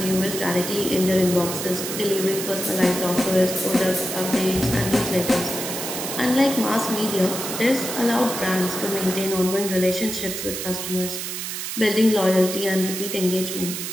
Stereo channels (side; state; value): right; noise; hiss, 5 dB below the sound